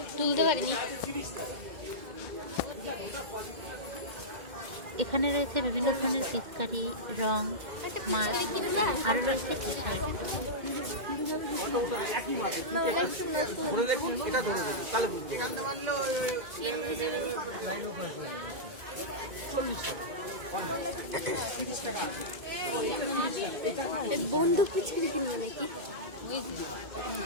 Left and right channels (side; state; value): left; late; 2.1 ms